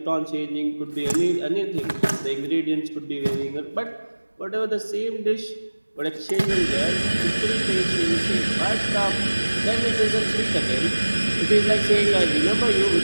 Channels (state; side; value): inverted; both; correlation -1.00